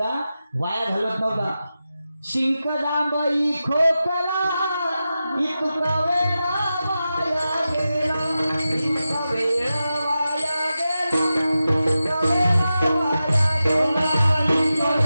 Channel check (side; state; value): both; inverted; correlation -0.92